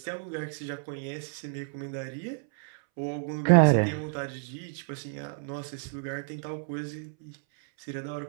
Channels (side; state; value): left; silent; 58 dB below the other